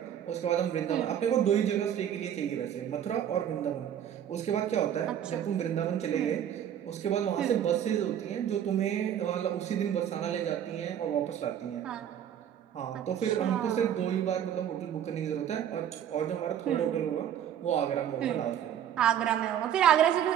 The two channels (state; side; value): quieter; left; 9.9 dB